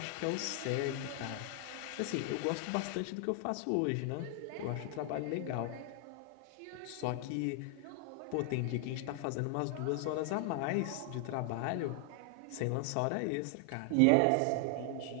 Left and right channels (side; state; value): both; different; correlation 0.00